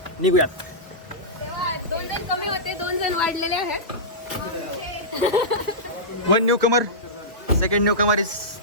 निघूयात. 2 जण कमी होते, 2 जण वाढलेले आहेत. One newcomer, second newcomer is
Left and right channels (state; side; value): normal; both; correlation -0.15